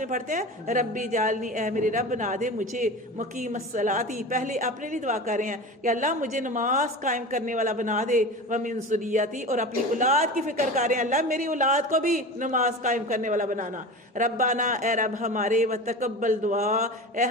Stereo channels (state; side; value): normal; both; correlation 0.31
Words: پڑھتے ہیں، ربی جالنی، اے میرے رب بنا دے مجھے مقیم الصلاۃ، پہلے اپنے لیے دعا کر رہے ہیں کہ اللہ مجھے نماز قائم کرنے والا بنا دے، ومن ذریتی، اور اپنی اولاد کی فکر کر رہے ہیں اللہ میری اولاد کو بھی نماز قائم کرنے والا بنانا۔ ربنا، اے رب ہمارے، وتقبل دعا، اے